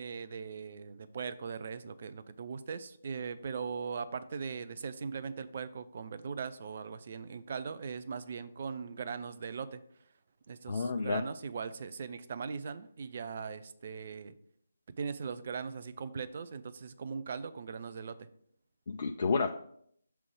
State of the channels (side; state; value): both; inverted; correlation -0.78